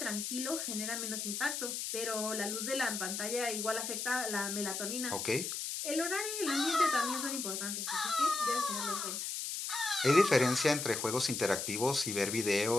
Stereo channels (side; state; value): left; noise; hiss, 3 dB below the sound